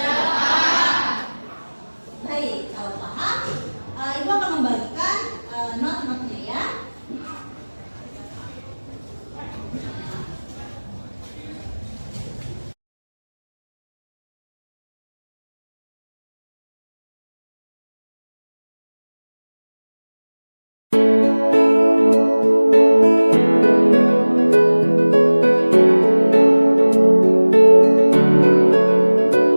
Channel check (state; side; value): inverted; both; correlation -1.00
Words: Baik, kalau paham, Ibu akan membagikan not-notnya ya.